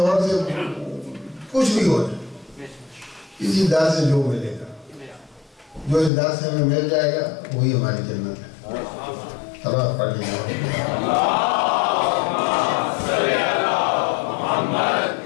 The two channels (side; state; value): right; drops out; at 6.1 s